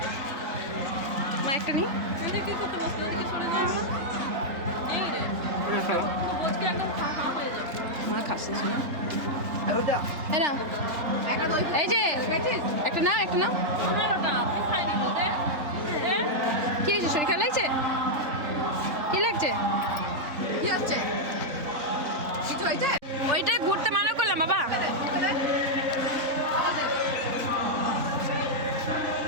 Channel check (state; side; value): late; left; 3.4 ms